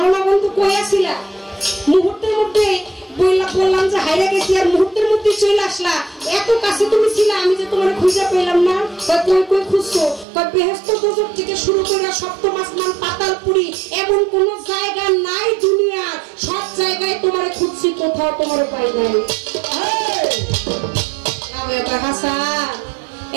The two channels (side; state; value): left; drops out; at 10.2 s